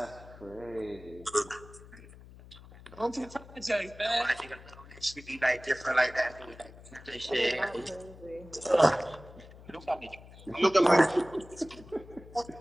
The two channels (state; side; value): noise; left; hum, 19 dB below the sound